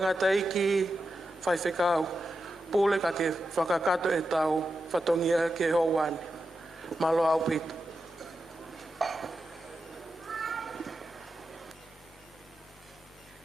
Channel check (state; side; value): normal; both; correlation 0.89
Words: eiki whai whekau. Pule ka ke whakakato e tau whatongia ke hoani. Malo au pita.